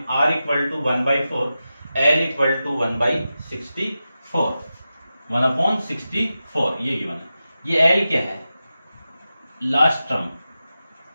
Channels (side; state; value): both; inverted; correlation -0.92